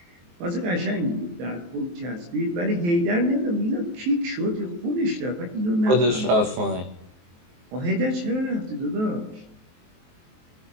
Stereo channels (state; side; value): late; left; 23 ms